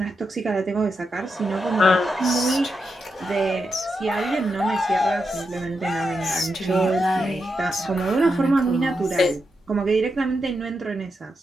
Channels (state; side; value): normal; both; correlation 0.85